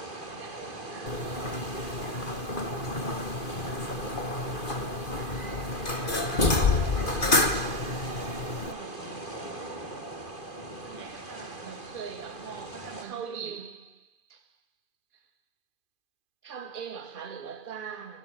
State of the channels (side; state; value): right; late; 2.5 ms